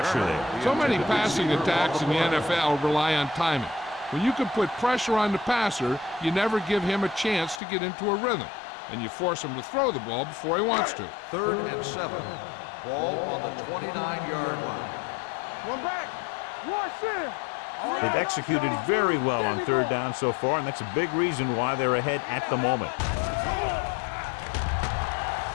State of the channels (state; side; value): drops out; right; at 7.6 s